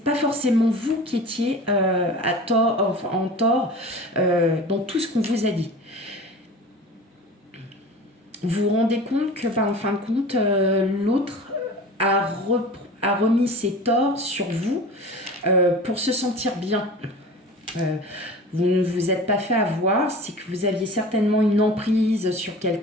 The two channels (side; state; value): both; normal; correlation 0.37